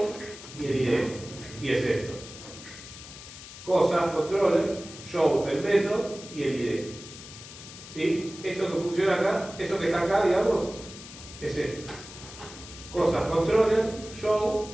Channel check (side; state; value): left; noise; hiss, 15 dB below the sound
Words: y el ID, y es esto. Cosas, controller, show, el método y el ID. ¿Sí? Eso que funciona acá, eso que está acá, digamos, es esto. Cosas, controller,